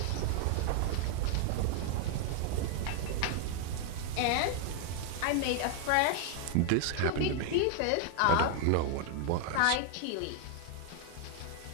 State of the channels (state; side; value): different; both; correlation 0.00